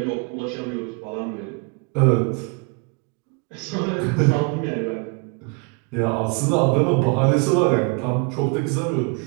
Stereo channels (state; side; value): quieter; left; 33.6 dB